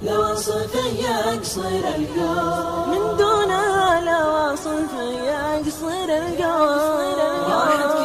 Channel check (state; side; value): identical; both; correlation 1.00